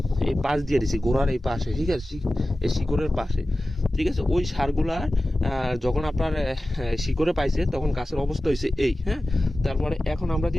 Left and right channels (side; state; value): both; normal; correlation 0.95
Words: এই পাশ দিয়ে দিছি গোড়ার এই পাশে। ঠিক আছে, এই শিকড়ের পাশে। ঠিক আছে, ওই সারগুলার যখন আপনার শিকড়ে পাইছে তখন গাছের অবস্থা হয়েছে এই। হ্যাঁ, তারপরে এখন আমরা